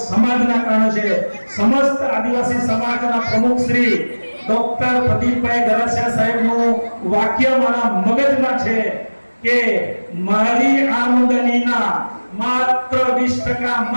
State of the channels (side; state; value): both; inverted; correlation -1.00